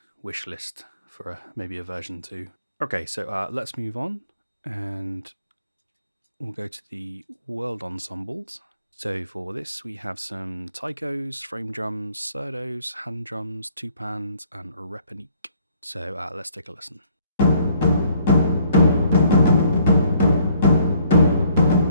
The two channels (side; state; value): both; inverted; correlation -0.62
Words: wish list for maybe a version 2. Okay, so let's move on and we'll go to the world ensembles. So for this, we have some taikos, frame drums, surdos, hand drums, two pans, and a repanique. So let's take a listen.